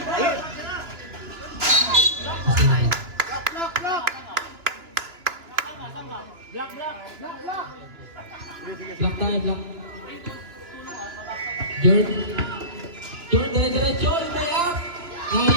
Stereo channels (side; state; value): left; late; 2.9 ms